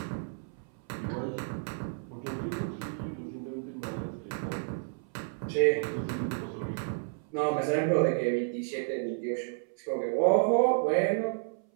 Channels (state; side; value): silent; left; 57 dB below the other